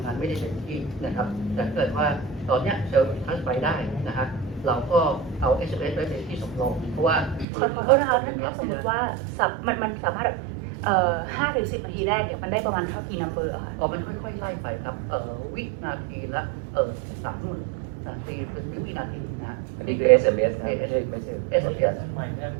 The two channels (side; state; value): left; drops out; at 7.5 s